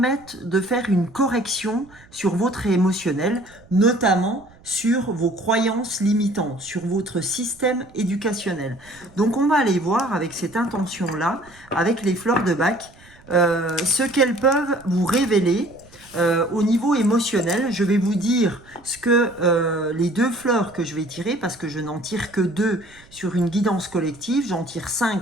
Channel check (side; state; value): right; noise; rumble, 26 dB below the sound